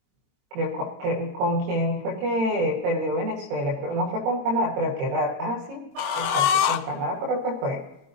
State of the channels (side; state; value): left; late; 22 ms